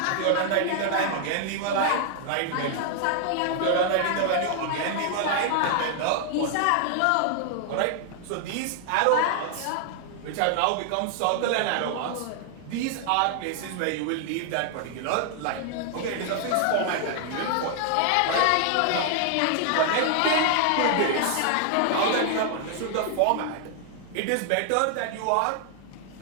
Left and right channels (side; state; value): both; different; correlation 0.00